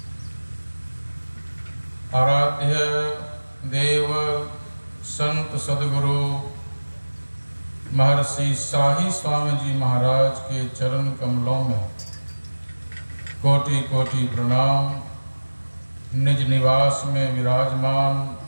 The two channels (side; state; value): both; inverted; correlation -1.00